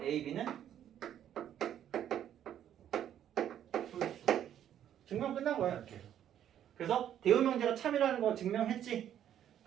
A, B는 증명 끝난 거야 이렇게. 그래서 대우 명제가 참이라는 거 증명했지.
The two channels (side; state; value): left; quieter; 10.4 dB